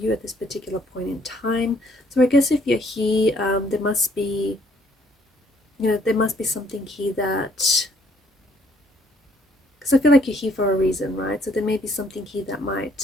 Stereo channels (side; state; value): both; normal; correlation 0.65